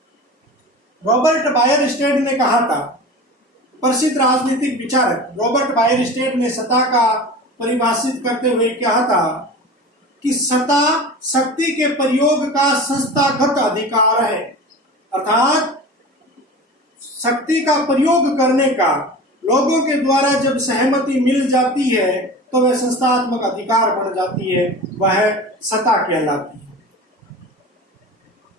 रॉबर्ट बायरस्टेड ने कहा था, प्रसिद्ध राजनीतिक विचारक रॉबर्ट बायरस्टेड ने सत्ता का परिभाषित करते हुए कहा था कि सत्ता शक्ति के प्रयोग का संस्थागत अधिकार है, अर्थात शक्ति का प्रयोग करने का लोगों के द्वारा जब सहमति मिल जाती है तो वह संस्थात्मक अधिकार बन जाती है, वह सत्ता कहलाती है।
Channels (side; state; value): both; normal; correlation 0.34